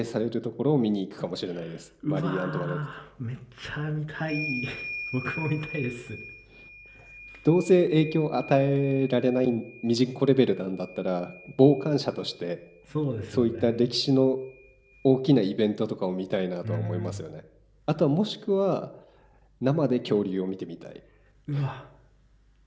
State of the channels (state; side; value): identical; both; correlation 1.00